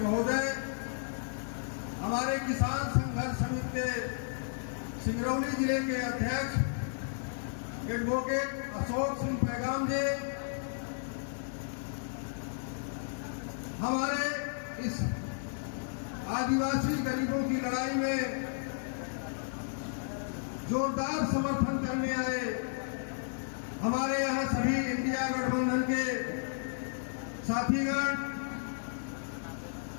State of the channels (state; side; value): silent; right; digital silence